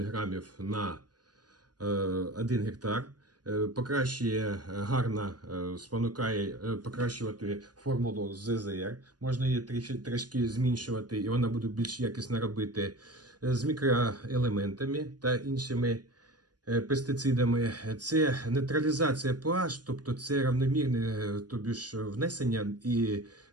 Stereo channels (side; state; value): left; late; 0.69 ms